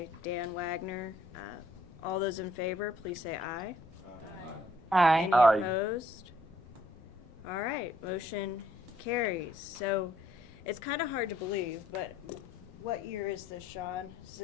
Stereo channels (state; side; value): normal; both; correlation 0.66